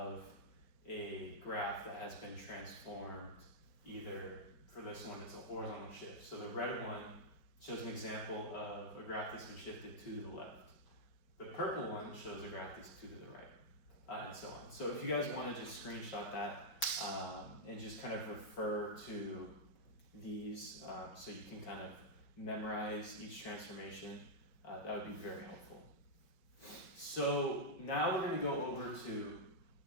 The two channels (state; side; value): late; right; 5.1 ms